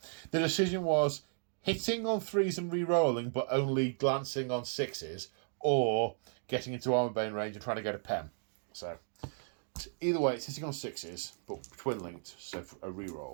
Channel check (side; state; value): left; silent; digital silence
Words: The decision was hitting on 3s and re-rolling, but only glancing on 6s, or getting into armor bane range and trying to get a pen. So either way, it's hitting on 6s, but twin linked, so for a